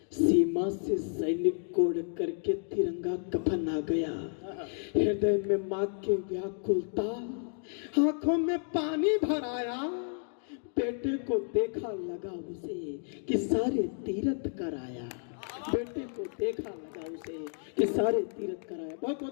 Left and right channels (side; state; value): right; silent; 57 dB below the other